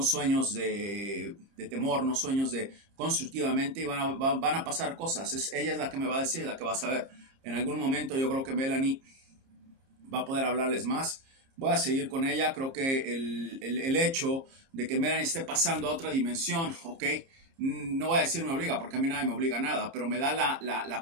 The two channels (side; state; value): left; late; 30 ms